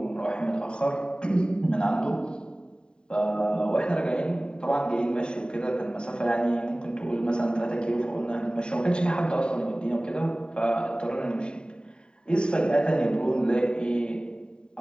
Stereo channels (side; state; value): right; late; 0.049 ms